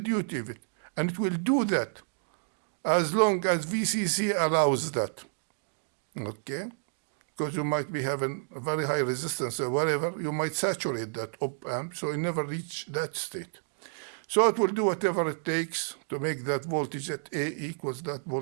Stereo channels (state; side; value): silent; left; digital silence